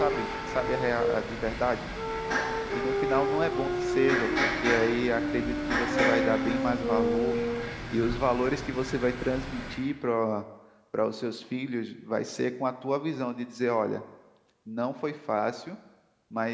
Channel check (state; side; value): identical; both; correlation 1.00